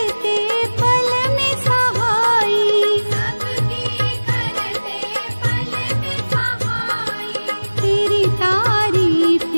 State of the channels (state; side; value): inverted; both; correlation -1.00